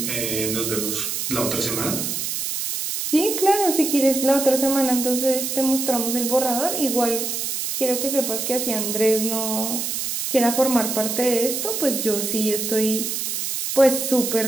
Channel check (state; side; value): noise; right; hiss, 2 dB below the sound